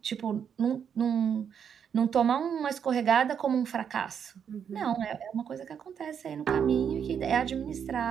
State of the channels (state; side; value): quieter; left; 7.8 dB